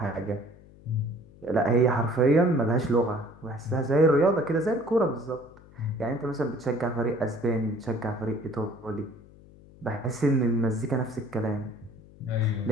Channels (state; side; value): noise; left; hum, 23 dB below the sound